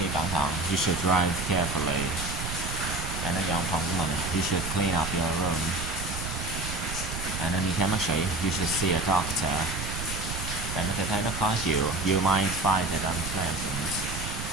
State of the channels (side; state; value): right; noise; rumble, 6 dB below the sound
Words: cẩn thận. You should drive carefully. Bạn nên dọn phòng của mình. You should clean up your room. Bạn nên đi khám bác sĩ. You should see a doctor. Bạn có thể thấy nó khó chịu. You might find it unpleasant.